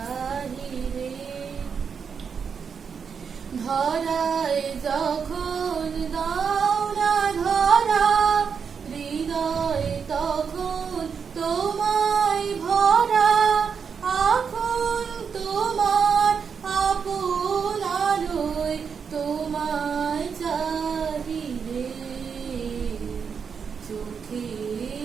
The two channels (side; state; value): left; quieter; 6.4 dB